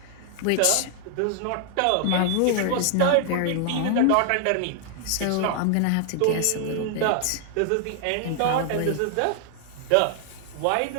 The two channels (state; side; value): different; both; correlation 0.00